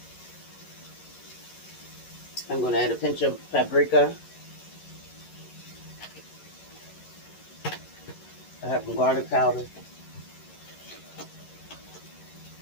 I'm going to add a pinch of paprika. I have some garlic powder.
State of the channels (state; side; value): late; right; 11 ms